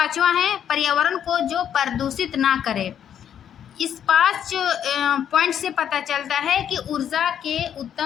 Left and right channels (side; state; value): right; quieter; 9.3 dB